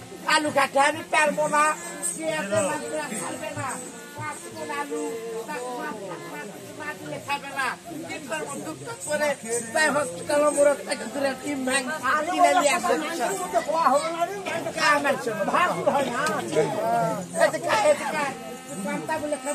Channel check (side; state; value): both; identical; correlation 1.00